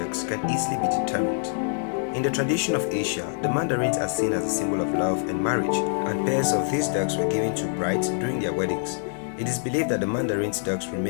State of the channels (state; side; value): silent; right; digital silence